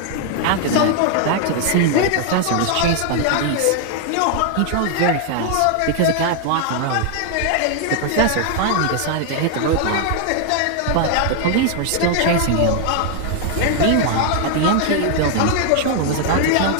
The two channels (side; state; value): both; different; correlation 0.00